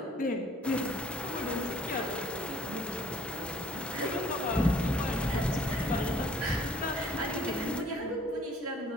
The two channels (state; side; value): normal; both; correlation 0.58